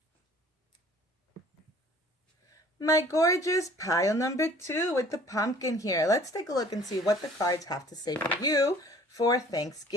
My gorgeous pile number 2 with the pumpkin here. Let's take a look and see what the cards have to say for you for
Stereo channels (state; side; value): normal; both; correlation 0.52